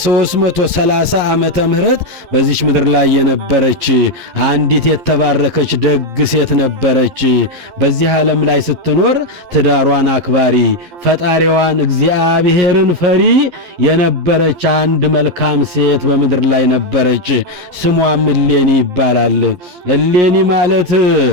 ዓመተ ምህረት በዚች ምድር ላይ የነበረች አንዲት የተባረከች ደግ ሴት ነበረች። በዚህ ዓለም ላይ ስትኖር ትዳሯን አክባሪ ፈጣሪዋን እግዚአብሔርን ፈሪ የነበረች አንድ መልካም ሴት በምድር ላይ ነበረች። ስሟም እሌኒ ይባላል። እሌኒ ማለት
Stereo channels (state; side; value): late; left; 11 ms